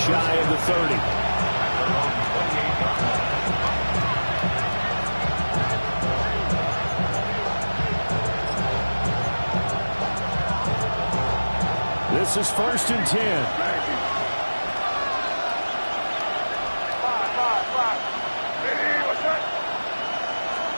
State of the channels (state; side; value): inverted; both; correlation -1.00